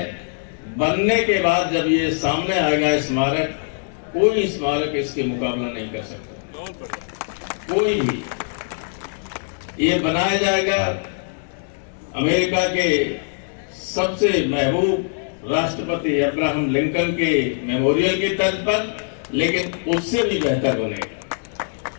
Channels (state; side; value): silent; right; digital silence